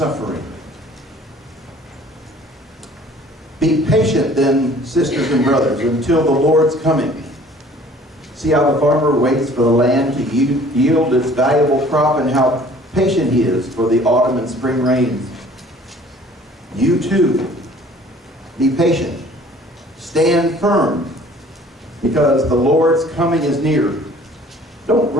Be patient then, sisters and brothers, until the Lord's coming. See how the farmer waits for the land to yield its valuable crop, and how patient he is for the autumn and spring rains. You too, be patient. Stand firm, because the Lord's coming is near. Don't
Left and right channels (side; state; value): both; normal; correlation 0.52